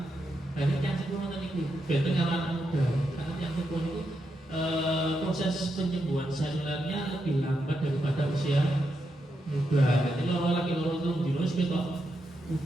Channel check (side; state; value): both; normal; correlation 0.84